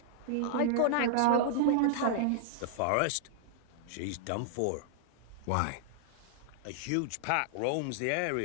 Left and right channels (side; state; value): both; different; correlation -0.01